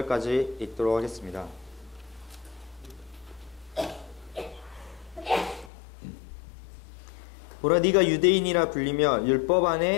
읽도록 하겠습니다. 보라, 네가 유대인이라 불리며 율법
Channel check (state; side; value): drops out; right; at 5.7 s